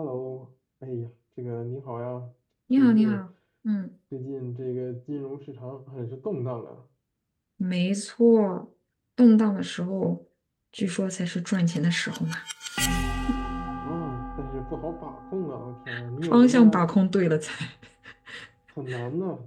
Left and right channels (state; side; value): identical; both; correlation 1.00